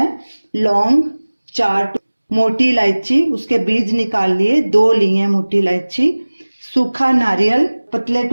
लौंग 4, मोटी इलायची उसके बीज निकाल लिए, 2 ली है मोटी इलायची। सूखा नारियल पतले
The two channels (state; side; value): inverted; both; correlation -1.00